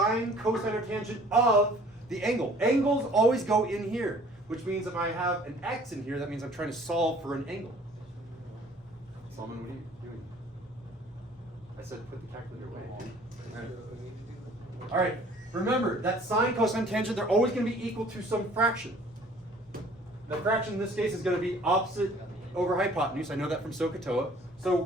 cosine, or tangent of the angle. Angles always go in here, which means if I have an x in here, that means I'm trying to solve for an angle. Solomon, what are you doing? I said put the calculator away. All right, remember that sine, cosine, tangent, they're always going to be equal to some fraction. The fraction in this case is going to be opposite over hypotenuse. I know that from SOHCAHTOA. So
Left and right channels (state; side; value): normal; both; correlation 0.53